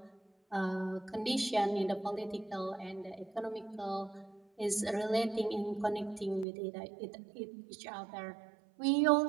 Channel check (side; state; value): left; drops out; at 6.5 s